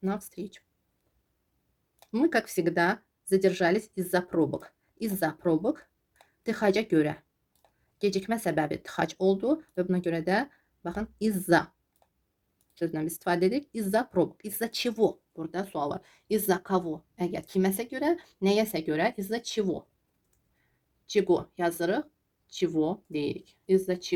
на встречу. Мы, как всегда, задержались из-за пробок. Из-за pробок tıxaca görə. Gecikmə səbəbi tıxac oldu və buna görə də baxın из-за sözündən biz istifadə edirik. Из-за pробок. Из-за чего? Burada sual var. Из-за кого? Əgər kiməsə görə, nəyəsə görə из-за чего? Чего yazırıq, чего deyirik. Из-за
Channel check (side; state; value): both; identical; correlation 1.00